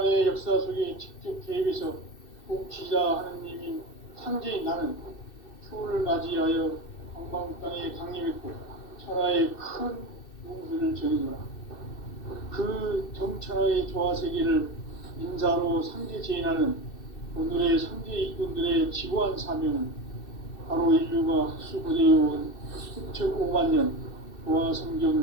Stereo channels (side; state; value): right; late; 2.6 ms